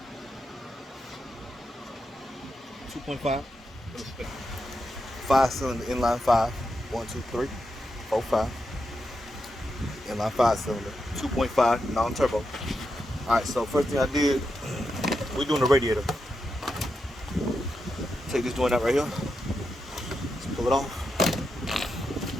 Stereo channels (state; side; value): normal; both; correlation 0.86